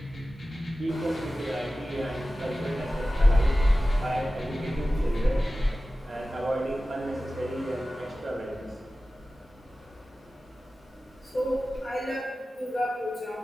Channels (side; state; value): both; normal; correlation 0.95